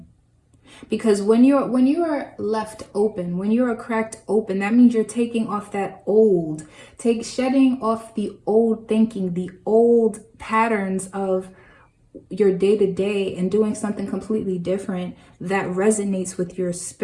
Because when you are left open, when you are cracked open, that means you're taking off that old, shedding off the old thinking, the old patterns of your day-to-day, and doing something completely different that resonates with your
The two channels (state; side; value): identical; both; correlation 1.00